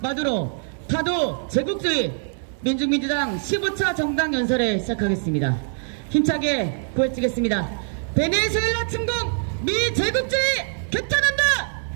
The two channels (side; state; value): left; silent; digital silence